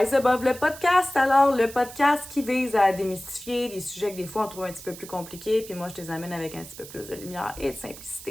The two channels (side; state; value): right; noise; hiss, 15 dB below the sound